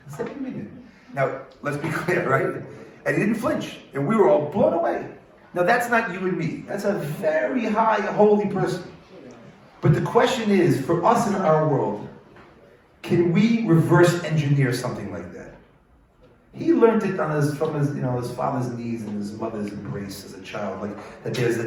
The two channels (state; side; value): identical; both; correlation 1.00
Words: send me a minyan. Now, let's be clear, right? And he didn't flinch, and we were all blown away. Now, that's not you and me. That's a very high, holy person. But the question is, for us in our world, can we reverse engineer something like that? He learned it from his father's knees and his mother's embrace as a child,